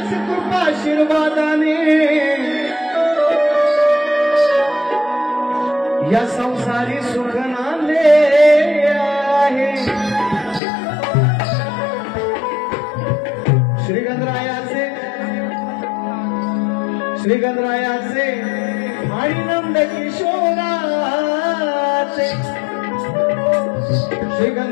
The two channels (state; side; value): drops out; right; at 10.6 s